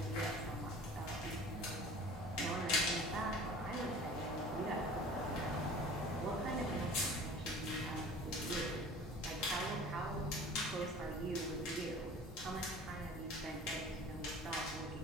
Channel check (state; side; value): normal; both; correlation 0.44